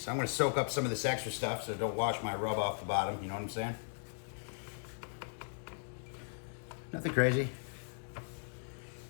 I'm gonna soak up some of this extra stuff so don't wash my rub off the bottom, you know what I'm saying? Nothing crazy.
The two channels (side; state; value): right; silent; digital silence